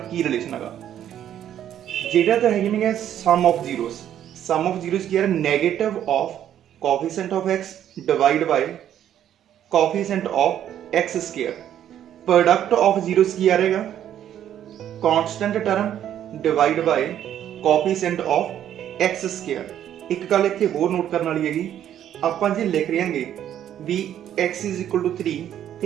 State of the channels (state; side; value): quieter; left; 10.6 dB